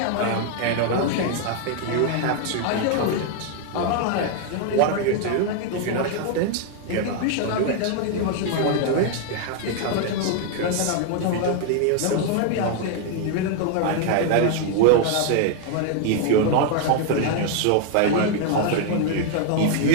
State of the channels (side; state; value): both; different; correlation 0.00